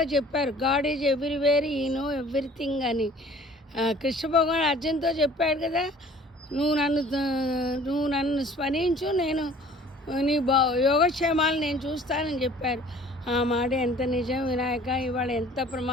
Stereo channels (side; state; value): both; normal; correlation 0.50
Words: చెప్పారు, గాడ్ ఈజ్ ఎవ్రీవేర్, ఈ నో ఎవ్రీథింగ్ అని. కృష్ణ భగవాన్ అర్జున్తో చెప్పాడు కదా, నువ్వు నన్ను స్మరించు, నేను నీ యోగక్షేమాలు నేను చూస్తానని చెప్పారు. ఆ మాట ఎంత నిజం వినాయక. ఇవాళ ఎంత